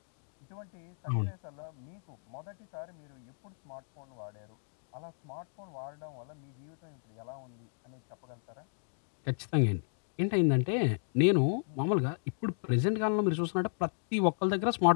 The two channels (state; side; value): silent; right; digital silence